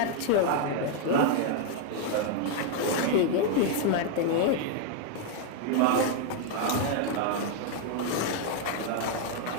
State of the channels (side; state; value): both; different; correlation 0.00